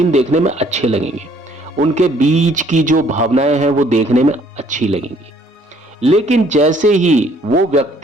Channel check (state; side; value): normal; both; correlation 0.61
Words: देखने में अच्छे लगेंगे। उनके बीच की जो भावनाएं हैं वो देखने में अच्छी लगेंगी। लेकिन जैसे ही वो